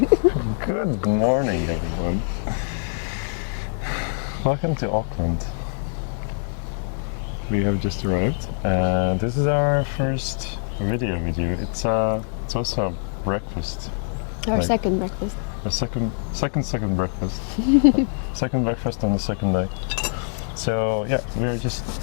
morning, everyone. Welcome to Auckland. We have just arrived, and this is our first video with you. It's also a breakfast. Our Like, second breakfast. a second breakfast. Second breakfast on the second day. So yeah, we are just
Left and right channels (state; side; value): silent; right; digital silence